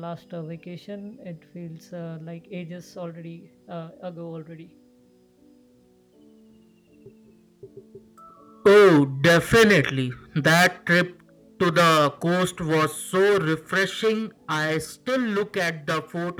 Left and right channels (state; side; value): identical; both; correlation 1.00